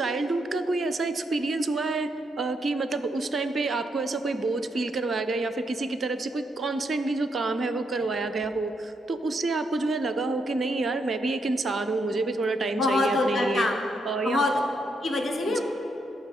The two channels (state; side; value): normal; both; correlation 0.78